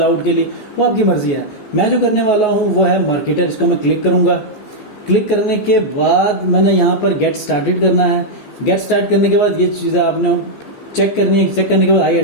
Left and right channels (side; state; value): right; late; 14 ms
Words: के लिए, वो आपकी मर्जी है। मैं जो करने वाला हूँ वो है मार्केटर। इसको मैं क्लिक करूंगा। क्लिक करने के बाद मैंने यहाँ पर गेट स्टार्टेड करना है। गेट स्टार्ट करने के बाद ये चीजें आपने चेक करनी है। चेक करने के बाद आई